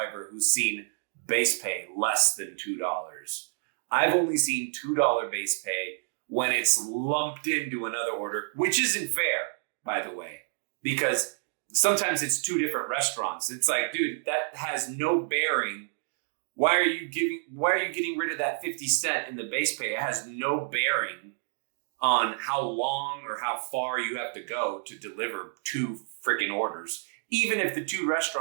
who's seen base pay less than $2. I've only seen $2 base pay when it's lumped into another order, which isn't fair, by the way, because sometimes it's two different restaurants. It's like, dude, that has no bearing. Why are you getting rid of that 50 cent in the base pay? It has no bearing on how long or how far you have to go to deliver two freaking orders, even if the two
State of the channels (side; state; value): left; silent; 59 dB below the other